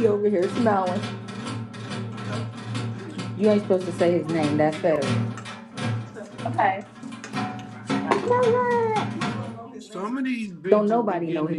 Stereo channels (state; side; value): identical; both; correlation 1.00